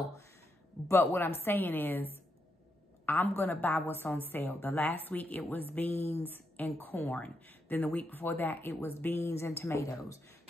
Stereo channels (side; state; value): both; normal; correlation 0.82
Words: but what I'm saying is, I'm going to buy what's on sale. The last week, it was beans and corn. Then the week before that, it was beans and tomatoes.